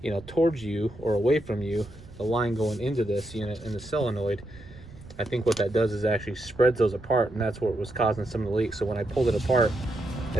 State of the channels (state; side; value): noise; right; rumble, 19 dB below the sound